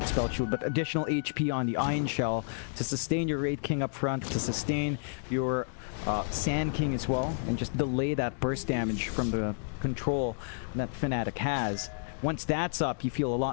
spell shield, but additional HP on the Iron Shell to sustain your Raid King up front, to sustain your Sand King as well, and just delay that burst damage from the control that Fnatic has. Once that's up, you feel a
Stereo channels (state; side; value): silent; right; digital silence